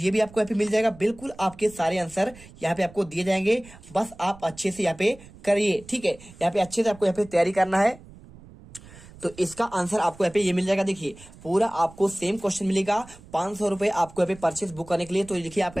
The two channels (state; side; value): noise; right; rumble, 21 dB below the sound